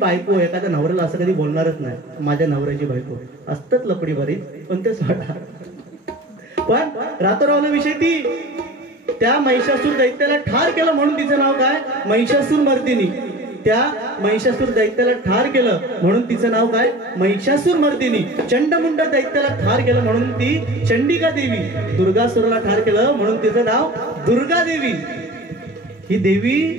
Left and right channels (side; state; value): both; normal; correlation 0.38